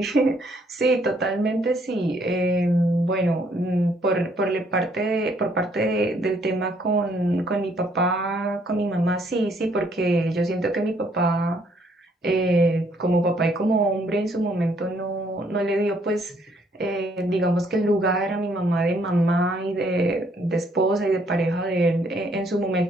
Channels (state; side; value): normal; both; correlation 0.67